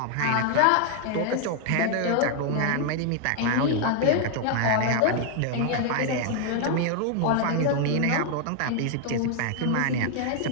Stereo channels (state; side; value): different; both; correlation 0.00